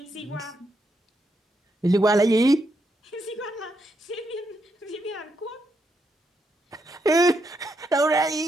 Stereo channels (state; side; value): normal; both; correlation 0.80